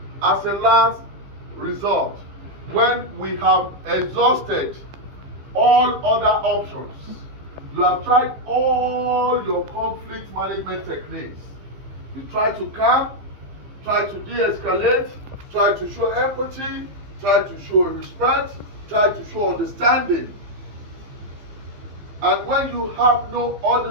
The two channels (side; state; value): left; late; 15 ms